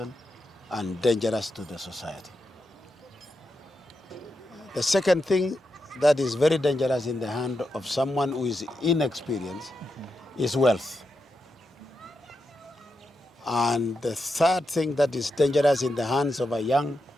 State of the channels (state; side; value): normal; both; correlation 0.86